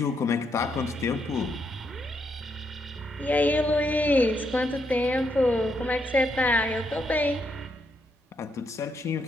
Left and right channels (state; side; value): normal; both; correlation 0.78